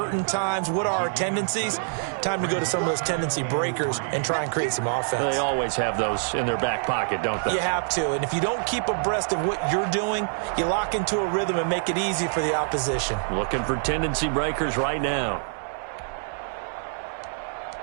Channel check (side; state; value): left; silent; 61 dB below the other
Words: times? What are our tendencies? Time to go to some of those tendency breakers and try and create some offense. They always have those in their back pocket, don't they? You have to, and if you don't keep abreast of what you're doing, you lock into a rhythm and make it easy for the opposition. Looking for tendency breakers right now.